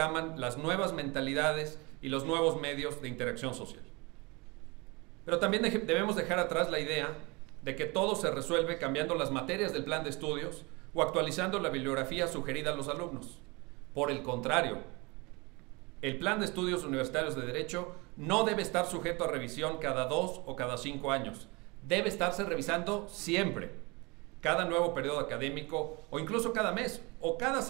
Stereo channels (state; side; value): quieter; left; 26.7 dB